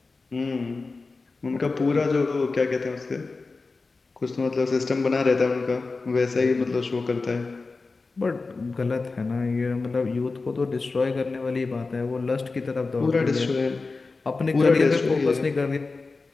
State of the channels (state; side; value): quieter; right; 3.9 dB